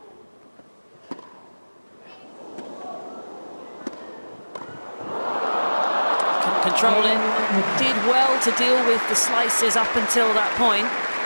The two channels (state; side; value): inverted; both; correlation -1.00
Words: Control it. Did well to deal with the slices up until that point.